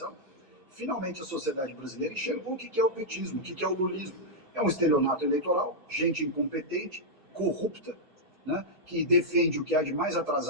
finalmente a sociedade brasileira enxergou o que é o petismo, o que é o lulismo. É um estelionato eleitoral, gente incompetente, corrupta, né, que defende o que há de mais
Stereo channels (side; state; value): left; late; 2.6 ms